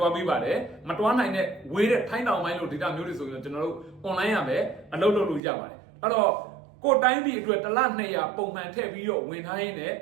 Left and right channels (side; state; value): left; drops out; at 5.4 s